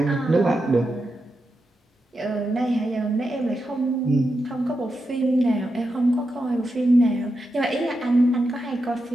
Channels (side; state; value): both; normal; correlation 0.87